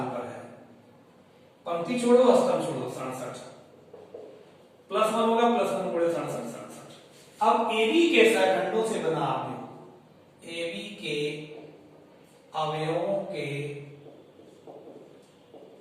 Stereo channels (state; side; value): identical; both; correlation 1.00